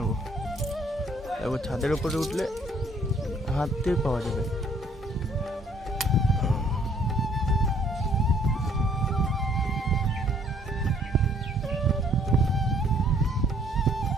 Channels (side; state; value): both; normal; correlation 0.61